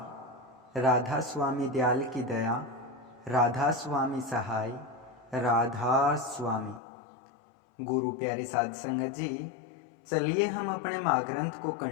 राधा स्वामी दयाल की दया, राधा स्वामी सहाय, राधा स्वामी। गुरु प्यारी साध संगत जी, चलिए हम अपने महाग्रंथ को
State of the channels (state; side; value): drops out; right; at 6.8 s